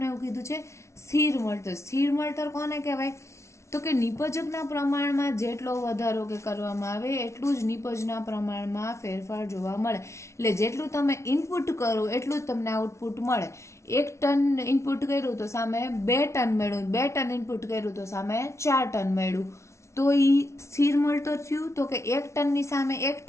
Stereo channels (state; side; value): late; right; 0.13 ms